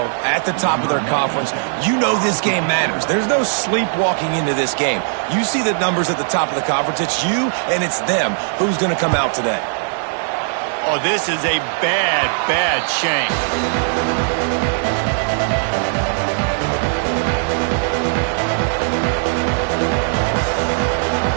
at the top of their conference. You know this game matters. There's no sleepwalking into this game. You see the numbers at the top of the conference. It's you and it's them. Who's going to come out today? Oh, this is a bad, bad shame.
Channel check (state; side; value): silent; left; digital silence